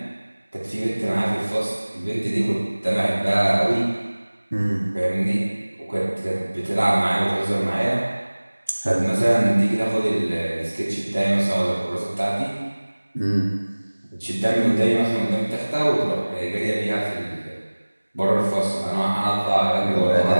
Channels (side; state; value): both; inverted; correlation -1.00